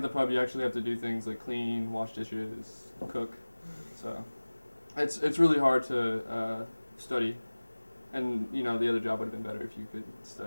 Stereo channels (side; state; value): both; inverted; correlation -1.00